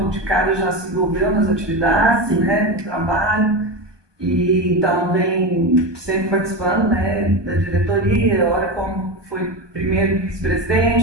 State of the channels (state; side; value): late; left; 1.2 ms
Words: de cara já se envolveu nas atividades, né, no trabalho, e então vem sempre participando, né, da diretoria, olha como foi primeiro